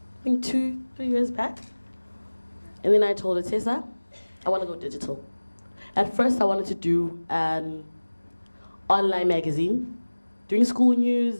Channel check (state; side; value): inverted; both; correlation -1.00